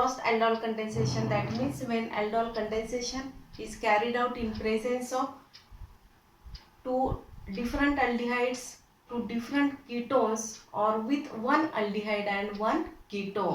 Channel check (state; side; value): identical; both; correlation 1.00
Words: aldol condensation, that means when aldol condensation is carried out in presence of two different aldehydes, two different ketones, or with one aldehyde and one